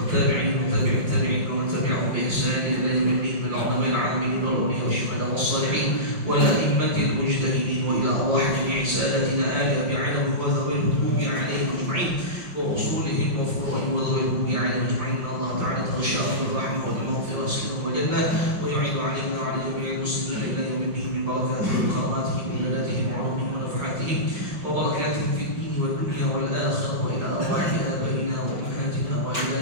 وتابع التابعين ومن تبعهم بإحسان إلى يوم الدين من العلماء العاملين والأولياء والشهداء والصالحين والأئمة المجتهدين وإلى أرواح جميع ساداتنا آل أبي علوي وذوي الهدوء عليهم أجمعين وأصولهم وفروعهم وذوي الهدوء عليهم أجمعين إن الله تعالى تغشاهم بالرحمة والمغفرة والسلام والجنة ويعين علينا وعلى جميع المسلمين إلى يوم الدين من بركاتهم وكراماتهم وعباداتهم وعلومهم ونفحاتهم وبركاتهم في الدين والدنيا والآخرة وإلى أرواح آبائنا وأمهاتنا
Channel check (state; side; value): late; left; 5.5 ms